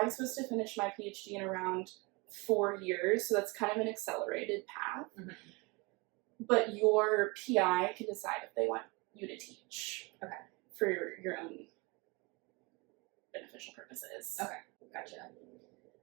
supposed to finish my PhD in around 4 years, so that's kind of an accelerated path. Mm-hmm. But your PI can decide if they want you to teach. Okay. For your own beneficial purposes. Okay, gotcha.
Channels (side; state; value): left; quieter; 27.4 dB